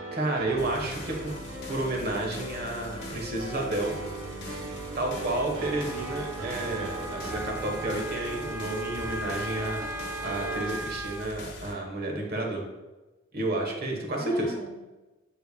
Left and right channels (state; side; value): normal; both; correlation 0.36